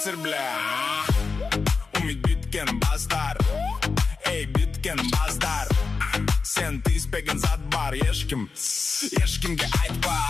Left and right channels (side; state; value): right; quieter; 4.6 dB